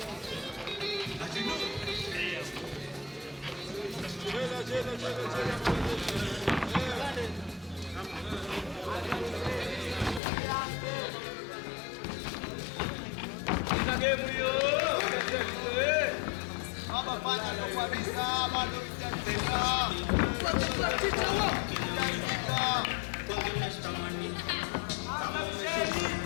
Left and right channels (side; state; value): right; drops out; at 10.2 s